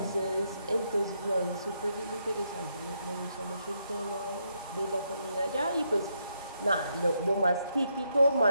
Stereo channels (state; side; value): inverted; both; correlation -0.79